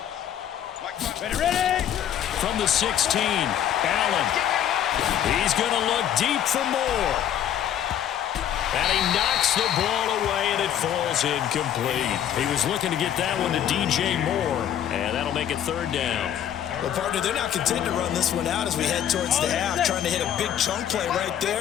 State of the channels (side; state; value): right; quieter; 10.3 dB